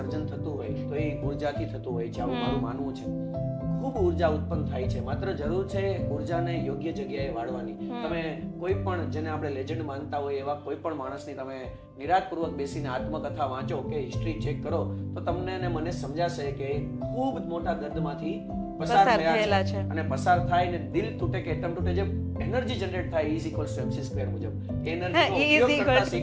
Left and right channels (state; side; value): identical; both; correlation 1.00